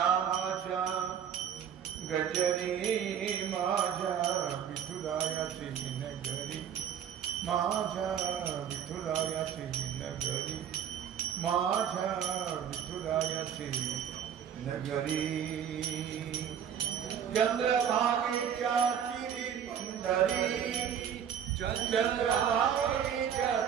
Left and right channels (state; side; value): quieter; left; 8.7 dB